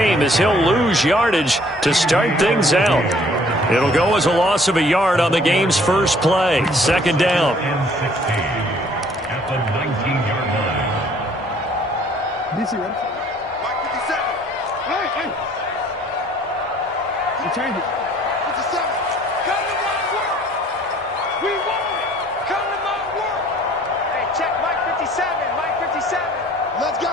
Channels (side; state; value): both; normal; correlation 0.57